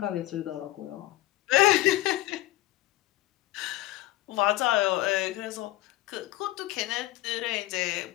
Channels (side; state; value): right; quieter; 17.3 dB